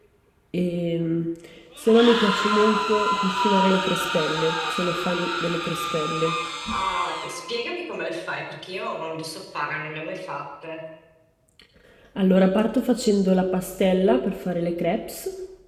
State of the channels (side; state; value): both; identical; correlation 1.00